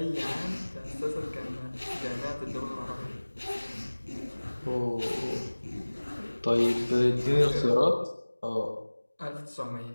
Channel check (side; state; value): both; inverted; correlation -1.00